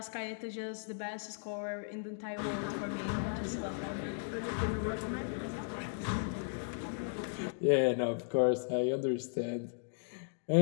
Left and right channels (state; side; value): silent; right; digital silence